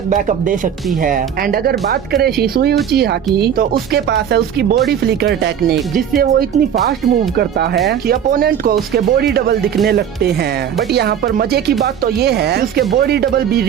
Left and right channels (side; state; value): left; quieter; 8.9 dB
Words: बैकअप दे सकती है। एंड अगर बात करें शिसुई उचिहा की, तो उसके पास है उसकी बॉडी फ्लिकर टेक्निक, जिससे वो इतनी फास्ट मूव करता है कि अपोनेंट को उसके बॉडी डबल दिखने लगते हैं। बट यहाँ पर मजे की बात तो ये है कि उसके बॉडी डबल भी